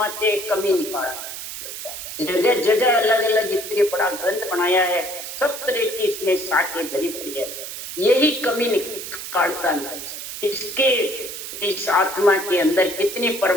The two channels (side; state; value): right; noise; hiss, 8 dB below the sound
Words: कमी निकालता है। जगह जगह अलग अलग इतने बड़ा ग्रंथ बनाया है, सब तरह की इसमें साके भरी पड़ी है, यही कमी निकालता है। इसके इस आत्मा के अंदर कितनी